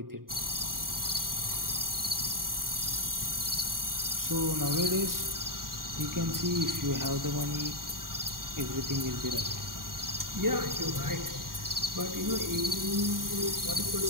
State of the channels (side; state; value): left; late; 0.91 ms